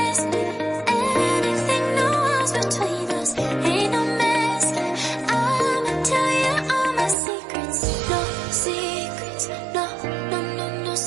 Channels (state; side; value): drops out; left; at 7.2 s